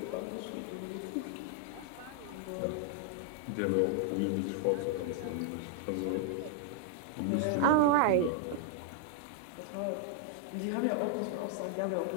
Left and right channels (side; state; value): both; different; correlation 0.00